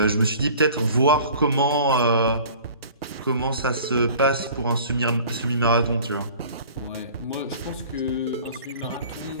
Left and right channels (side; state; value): both; inverted; correlation -0.46